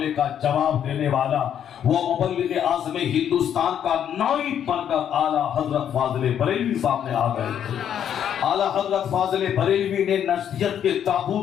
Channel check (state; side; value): quieter; right; 9.3 dB